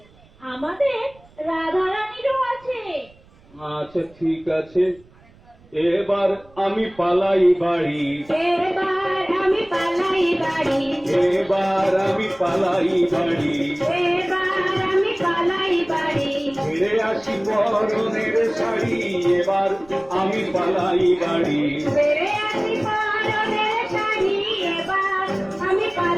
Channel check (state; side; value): noise; right; rumble, 28 dB below the sound